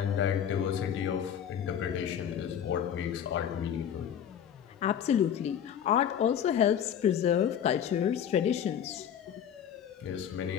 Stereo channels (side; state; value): right; quieter; 9.0 dB